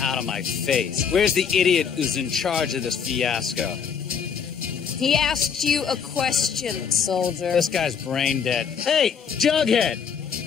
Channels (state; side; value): quieter; right; 6.9 dB